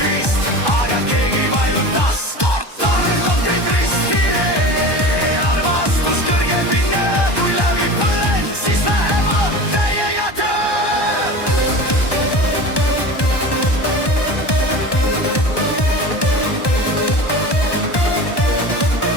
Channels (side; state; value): right; late; 1.2 ms